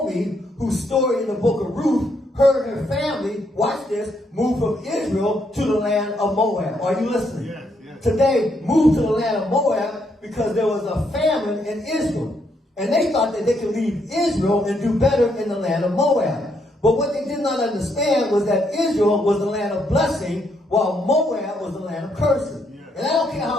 whose story in the book of Ruth, her and her family, watch this, moved from Israel to the land of Moab. Are you listening? Yes, yes. Today, moved to the land of Moab because there was a famine in Israel. And they thought that they could leave Israel and do better in the land of Moab. But what they did not understand was that Israel was the land of blessing, while Moab was the land of cursing. Yes. And I don't care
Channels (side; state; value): both; normal; correlation 0.75